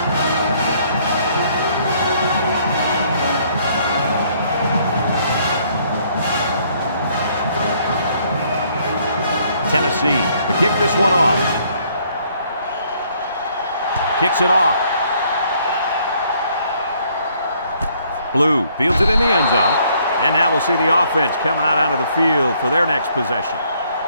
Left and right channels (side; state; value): both; inverted; correlation -0.65